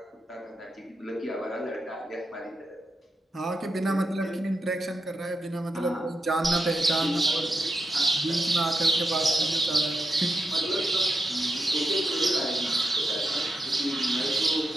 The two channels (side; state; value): both; normal; correlation 0.86